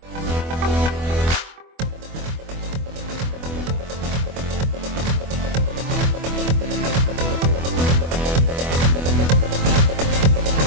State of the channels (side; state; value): left; late; 24 ms